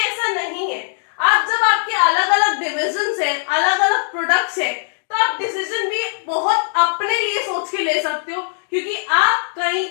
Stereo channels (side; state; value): right; silent; digital silence